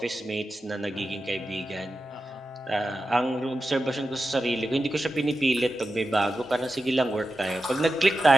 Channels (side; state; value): both; normal; correlation 0.91